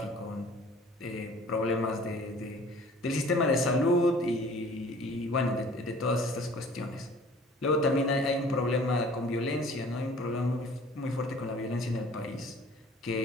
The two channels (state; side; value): normal; both; correlation 0.50